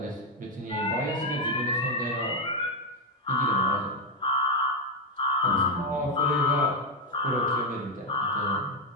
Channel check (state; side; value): normal; both; correlation 0.05